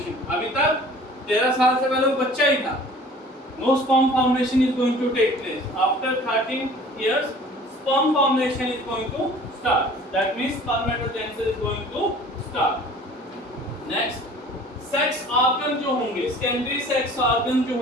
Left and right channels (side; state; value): both; normal; correlation 0.48